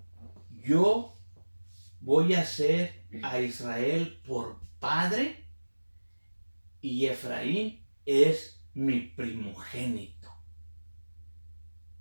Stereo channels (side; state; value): both; inverted; correlation -1.00